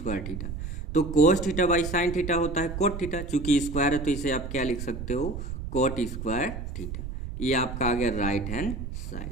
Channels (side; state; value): right; noise; rumble, 7 dB below the sound